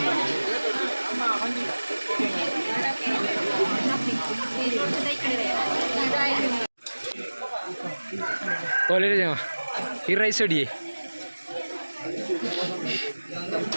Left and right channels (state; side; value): inverted; both; correlation -1.00